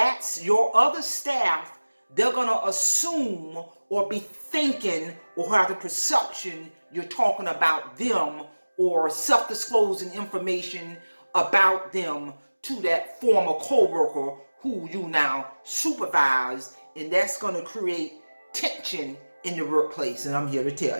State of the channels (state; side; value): inverted; both; correlation -1.00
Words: your other staff. They're going to assume or be thinking or have the perception you're talking about them or self-disclosing information about them to that former coworker who you now supervise, and that's going to create tension in the workplace, and I'm here to